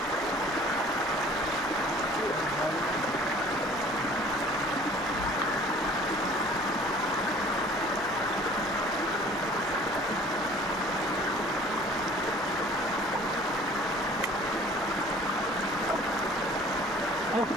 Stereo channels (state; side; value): normal; both; correlation 0.50